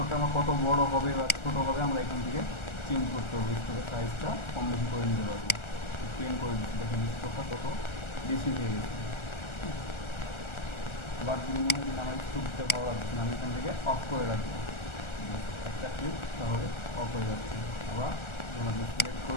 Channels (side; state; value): right; late; 1.4 ms